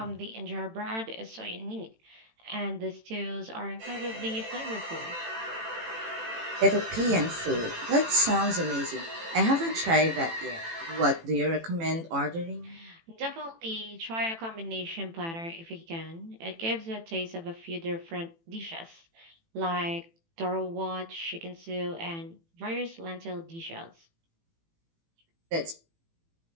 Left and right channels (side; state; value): left; late; 18 ms